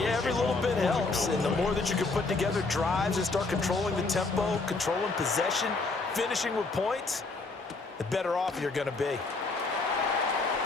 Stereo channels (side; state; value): right; quieter; 3.7 dB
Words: every little bit helps. And the more that you can put together drives and start controlling the tempo, controlling possession, finishing with points, the better off you're going to be.